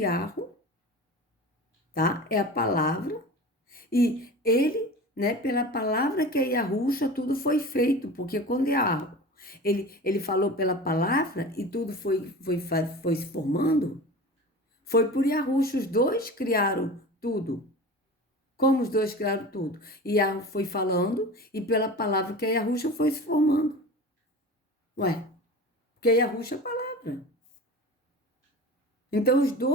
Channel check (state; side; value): normal; both; correlation 0.34